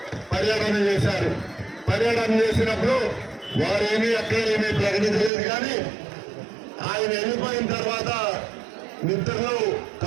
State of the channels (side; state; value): left; drops out; at 5.3 s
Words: పర్యటన చేశారు. పర్యటన చేసినప్పుడు వారేమీ అక్కడ ఏమీ ప్రకటించలేదు. కానీ ఆయన వెళ్ళిపోయిన తర్వాత మిత్రులు